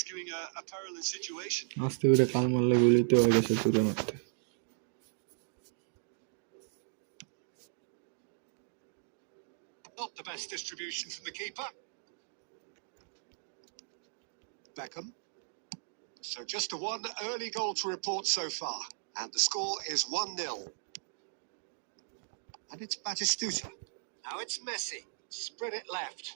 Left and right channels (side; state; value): left; silent; digital silence